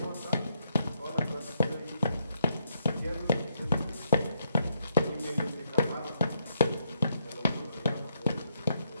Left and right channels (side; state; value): both; inverted; correlation -0.76